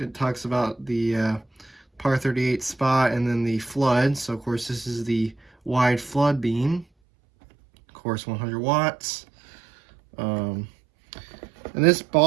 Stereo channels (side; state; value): left; drops out; at 6.9 s